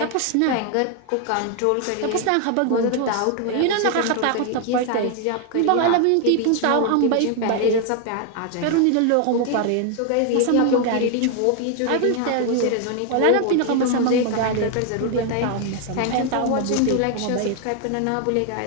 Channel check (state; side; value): different; both; correlation 0.00